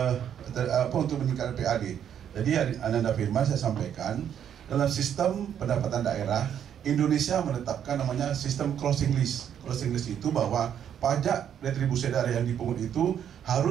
untuk meningkatkan PAD. Jadi Ananda Firman saya sampaikan, dalam sistem pendapatan daerah Indonesia menetapkan namanya sistem closing list. Closing list itu bahwa pajak retribusi daerah yang dipungut itu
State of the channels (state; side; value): quieter; left; 9.2 dB